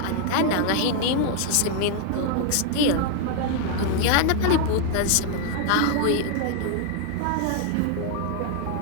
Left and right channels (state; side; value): different; both; correlation 0.00